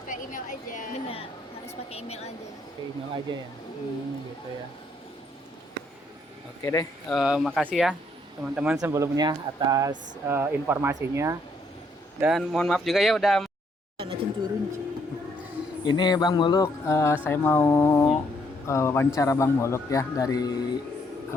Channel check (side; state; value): both; normal; correlation 0.71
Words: email aja. Benar, harus pakai email aja. Oke, email aja ya. Gitu ya. Oke deh, makasih ya teman-teman sebelumnya atas informasinya. Dan mohon maaf juga ya udah. Ini Bang Muluk, saya mau wawancara Bang Muluk ya dari